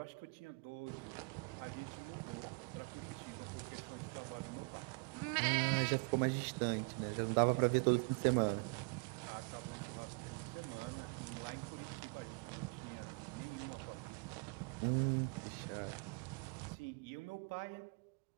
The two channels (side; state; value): left; quieter; 34.1 dB